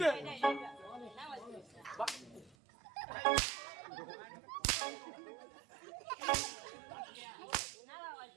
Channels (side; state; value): left; drops out; at 2.6 s